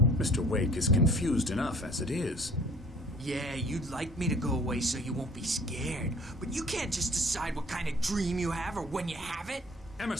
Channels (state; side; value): normal; both; correlation 0.52